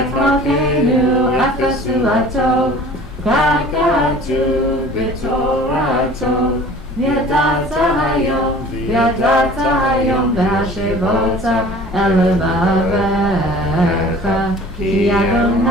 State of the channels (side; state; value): both; normal; correlation 0.45